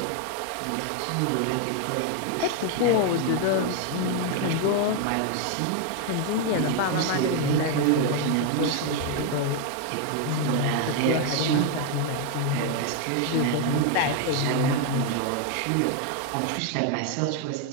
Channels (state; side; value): different; both; correlation 0.01